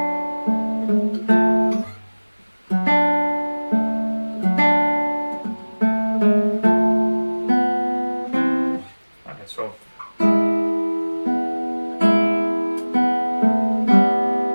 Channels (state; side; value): inverted; both; correlation -1.00